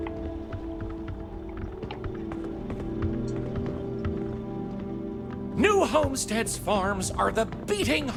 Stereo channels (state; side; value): identical; both; correlation 1.00